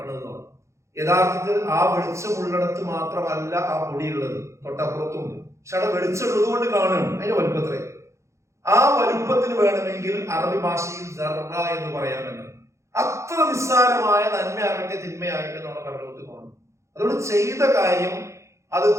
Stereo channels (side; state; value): left; late; 0.14 ms